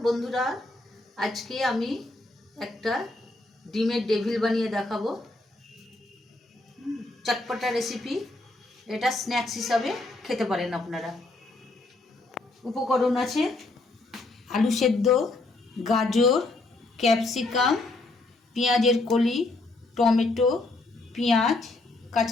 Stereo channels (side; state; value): right; quieter; 3.0 dB